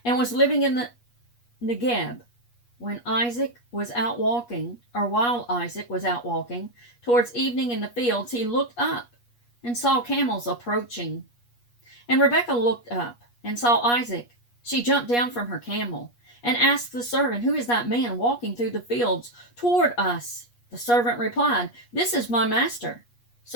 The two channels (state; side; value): late; right; 8.4 ms